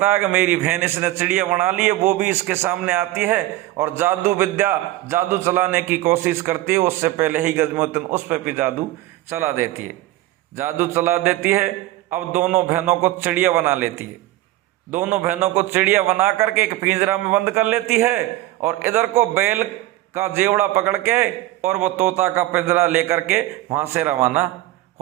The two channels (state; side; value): quieter; left; 16.6 dB